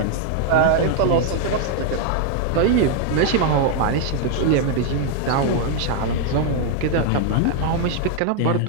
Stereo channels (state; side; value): different; both; correlation 0.00